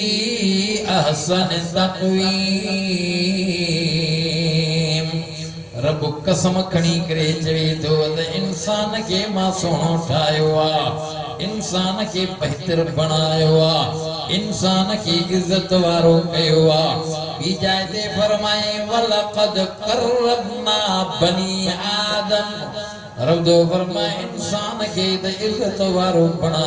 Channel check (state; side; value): identical; both; correlation 1.00